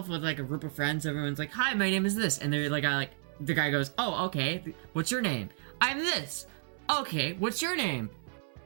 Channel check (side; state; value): left; silent; 57 dB below the other